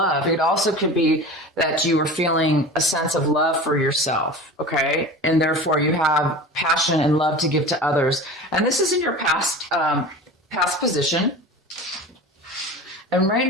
It also could be that you were feeling a sense of love for yourself, okay? And therefore you have passion and love to give to others. And this is in your past position. And right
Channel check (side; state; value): both; normal; correlation 0.34